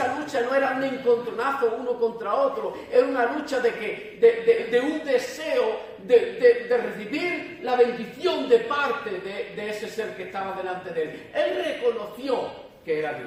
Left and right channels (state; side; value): identical; both; correlation 1.00